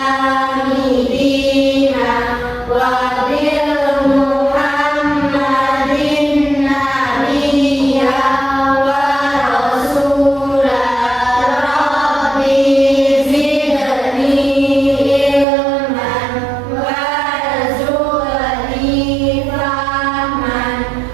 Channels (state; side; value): drops out; left; at 15.5 s